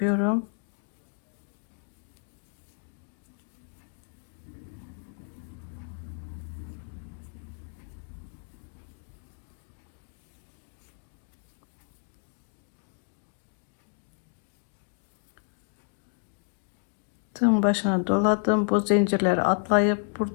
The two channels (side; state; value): right; silent; 56 dB below the other